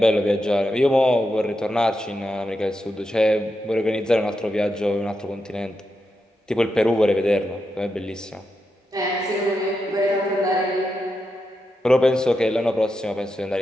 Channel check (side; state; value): both; normal; correlation 0.87